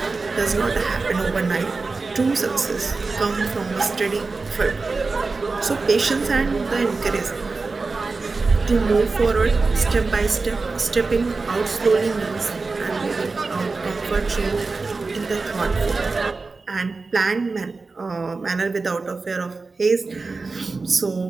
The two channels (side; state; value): left; quieter; 4.0 dB